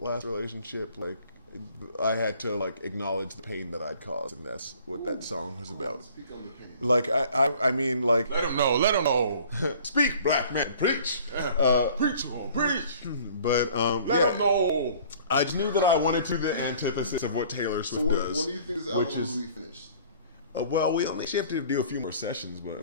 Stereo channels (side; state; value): both; inverted; correlation -0.51